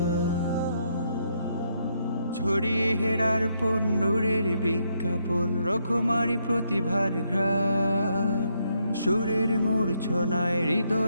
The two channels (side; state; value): both; inverted; correlation -0.76